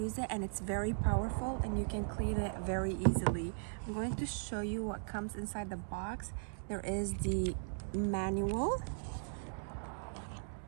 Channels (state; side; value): silent; left; digital silence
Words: it, and it's very powerful and you can clean it very easily. I'm going to show you what comes inside the box. There is the manual,